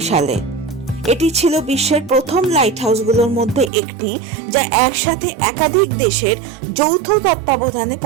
সালে। এটি ছিল বিশ্বের প্রথম লাইট হাউসগুলোর মধ্যে একটি, যা একসাথে একাধিক দেশের যৌথ তত্ত্বাবধানে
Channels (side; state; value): left; drops out; at 3.7 s